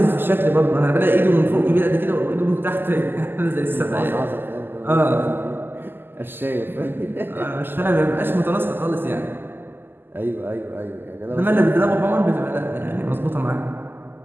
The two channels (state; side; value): late; left; 0.097 ms